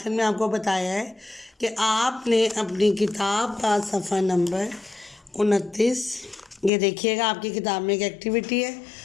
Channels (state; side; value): drops out; right; at 6.7 s